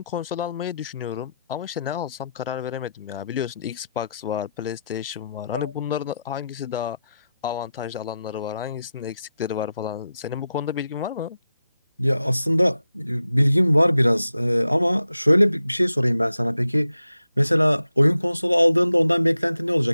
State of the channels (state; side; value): inverted; both; correlation -0.88